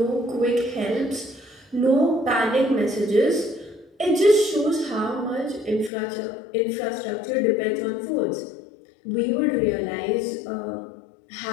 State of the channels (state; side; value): drops out; right; at 5.9 s